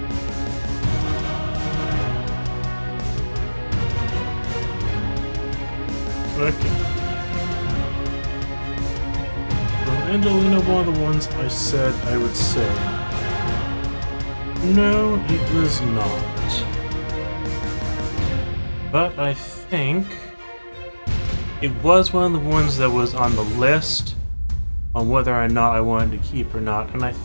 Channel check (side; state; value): both; inverted; correlation -1.00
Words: Okay. So Angelina, one of the ones I said I would say. No, it was not. But I think it was one of the ones that was on the list on whether or not I wanted to keep or not, and I